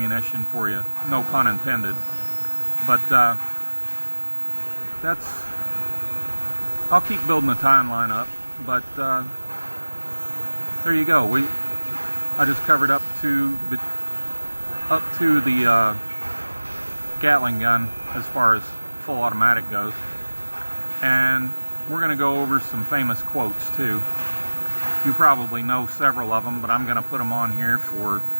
for you, no pun intended. But I'll keep building the timeline up. But there you go. I just covered up to the Gatling gun as far as full automatic goes, and we're going to go over some famous quotes too. You probably know several of them, but I'm going to put them on here for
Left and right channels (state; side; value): inverted; both; correlation -1.00